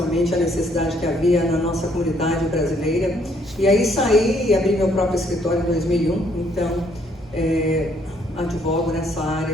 a necessidade que havia na nossa comunidade brasileira. E aí saí e abri meu próprio escritório em 2001, então advogo nessa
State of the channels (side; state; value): both; normal; correlation 0.67